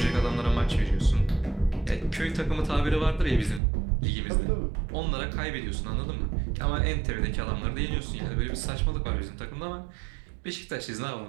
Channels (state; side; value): drops out; left; at 3.6 s